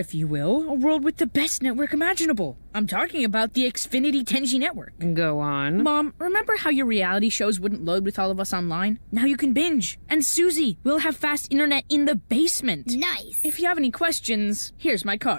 you will, a world with the best network imaginable. I'm talking about the Xfinity 10G network. Go on. Mom, remember how your reality shows wouldn't load with all of us online? Now you can binge. And Susie, we'll have fast internet in the basement. Nice. If you have any questions, here's my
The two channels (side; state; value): both; inverted; correlation -1.00